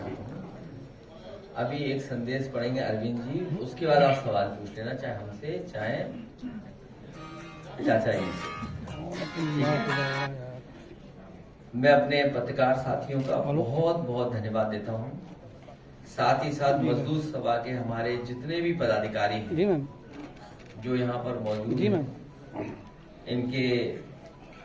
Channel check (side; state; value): both; identical; correlation 1.00